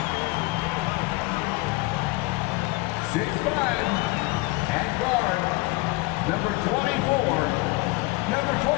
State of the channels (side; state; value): right; quieter; 22.6 dB